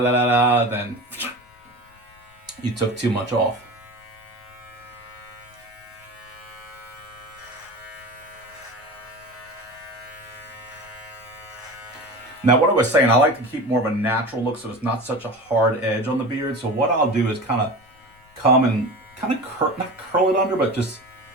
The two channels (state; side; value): noise; left; rumble, 29 dB below the sound